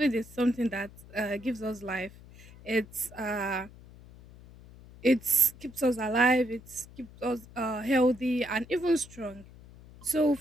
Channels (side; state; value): left; noise; hum, 20 dB below the sound